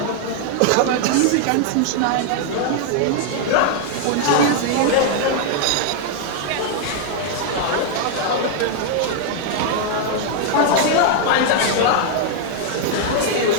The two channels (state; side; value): different; both; correlation 0.00